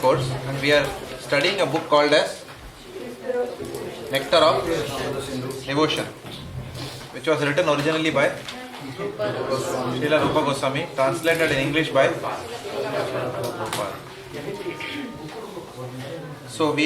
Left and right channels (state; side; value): identical; both; correlation 1.00